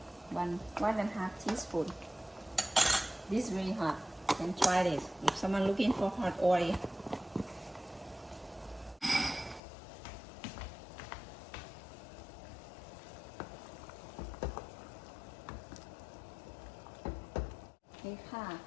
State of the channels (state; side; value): drops out; right; at 9.6 s